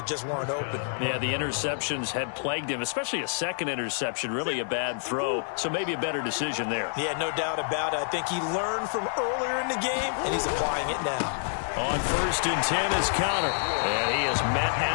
just weren't open. Yeah, the interceptions had plagued him, especially a 2nd interception, really a bad throw, so maybe a better decision there. Yeah, no doubt about it. I think he learned from earlier in the game, and he's applying it now. On 1st and 10 is Conner, and he is met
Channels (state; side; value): silent; right; digital silence